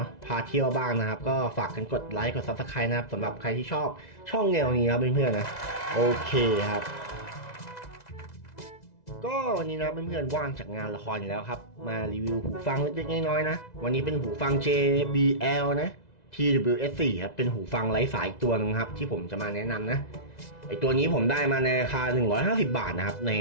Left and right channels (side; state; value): right; late; 2.0 ms